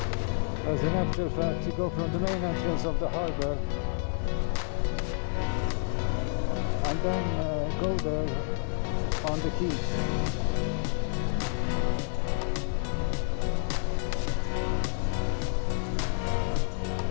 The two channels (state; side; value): silent; right; 58 dB below the other